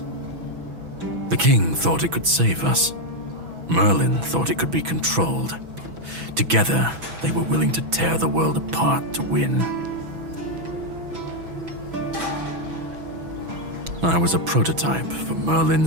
The king thought it could save us. Merlin thought it could be controlled. Together, they were willing to tear the world apart to win. I was a prototype for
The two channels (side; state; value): left; late; 6.1 ms